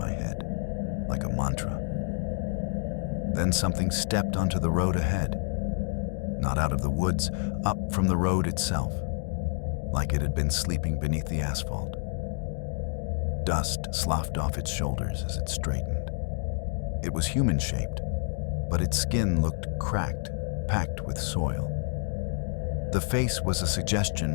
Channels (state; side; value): silent; right; 59 dB below the other